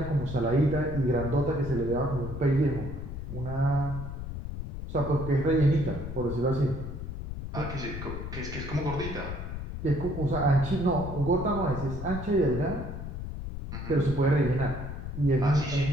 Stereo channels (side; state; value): left; noise; rumble, 7 dB below the sound